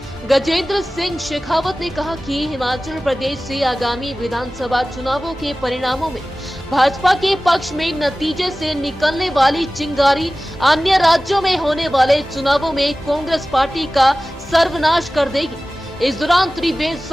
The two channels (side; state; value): both; normal; correlation 0.97